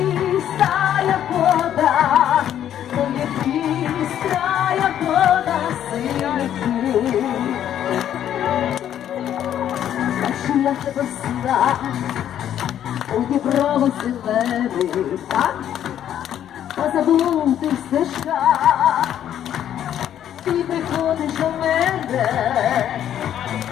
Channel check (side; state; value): right; quieter; 10.5 dB